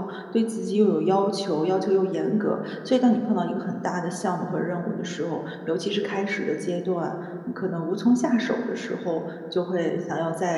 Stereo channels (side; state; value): both; identical; correlation 1.00